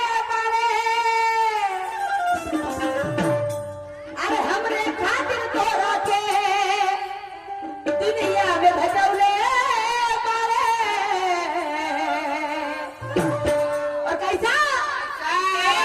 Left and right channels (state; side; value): identical; both; correlation 1.00